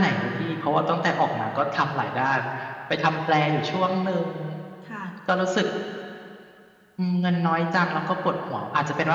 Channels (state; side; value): identical; both; correlation 1.00